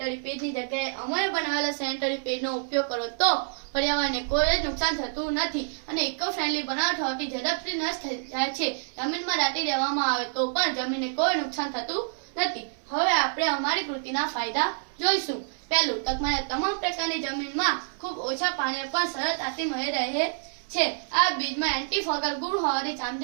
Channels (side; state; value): left; silent; 60 dB below the other